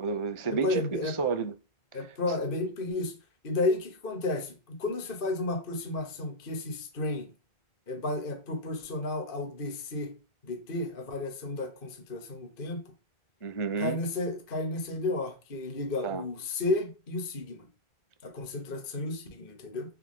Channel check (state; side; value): late; right; 2.5 ms